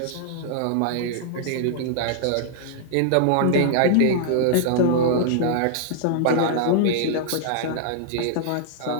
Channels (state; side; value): different; both; correlation -0.01